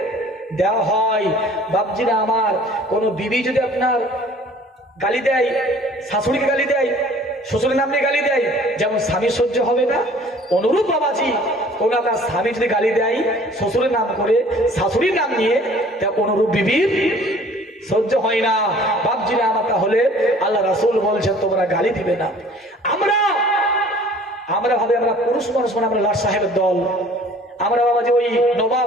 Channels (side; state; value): both; normal; correlation 0.51